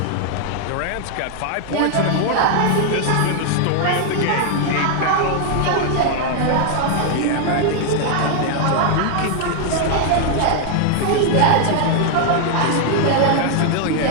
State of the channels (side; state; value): both; different; correlation 0.00